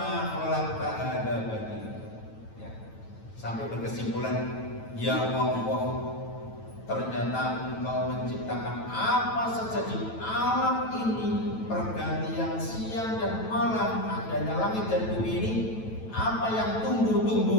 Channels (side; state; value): right; late; 9.1 ms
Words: khalaqta hadza batila. Ya. Sampai berkesimpulan, ya Allah, ternyata Engkau menciptakan apa saja di alam ini, pergantian siang dan malam, adanya langit dan bumi ini, apa yang